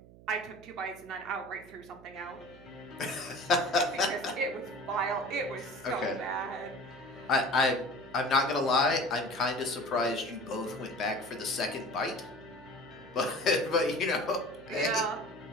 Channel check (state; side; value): noise; right; hum, 21 dB below the sound